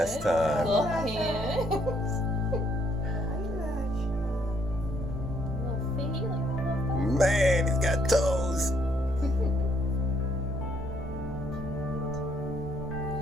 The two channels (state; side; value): normal; both; correlation 0.69